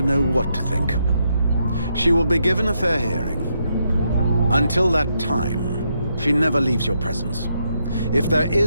know what to think. She will be given a fair hearing. Until that time, she never leaves your presence. If there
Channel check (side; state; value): both; inverted; correlation -0.79